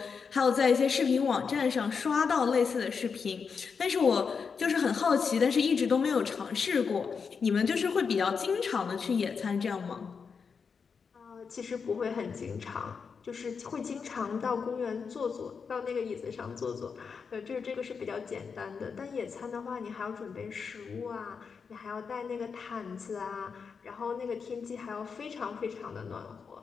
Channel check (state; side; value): quieter; right; 5.8 dB